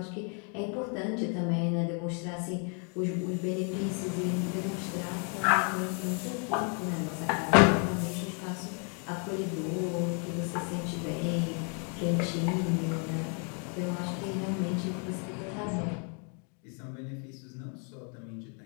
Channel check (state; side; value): quieter; right; 39.7 dB